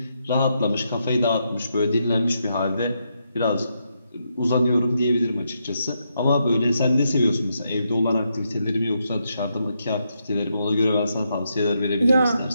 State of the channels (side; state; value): both; inverted; correlation -0.81